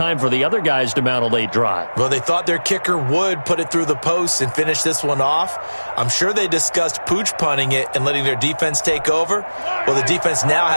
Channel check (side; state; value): both; inverted; correlation -1.00